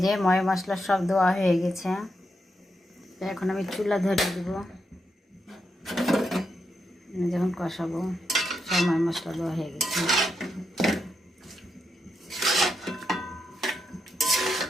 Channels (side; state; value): both; normal; correlation 0.83